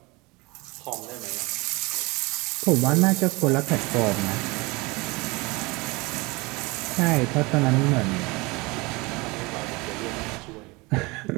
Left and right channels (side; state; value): left; quieter; 24.7 dB